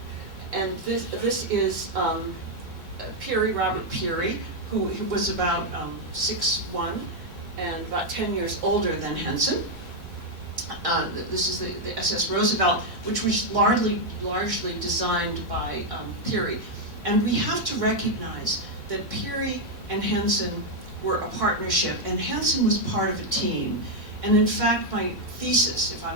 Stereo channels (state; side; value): normal; both; correlation 0.00